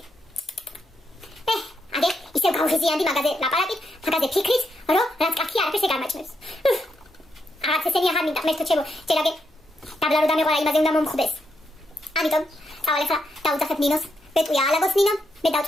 აგე ისევ გავღიზიანდი მაგაზე ლაპარაკით, მაგაზე ფიქრით, რომ რაც კაცი არაფერს ეგარმაჭმებს. აღარც ესენი აღარ მინდა, მე თვითონ ჯერაგე დაბლა რო დამეყარა იმაზე უნდა მომხდეს. ამიტომ წავალ ახლა დაუძახებ ნინოს. ბეტყვია ალაგოს ნინო, მე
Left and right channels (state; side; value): normal; both; correlation 0.80